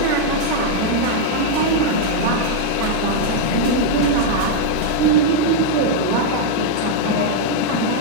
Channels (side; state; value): both; different; correlation -0.01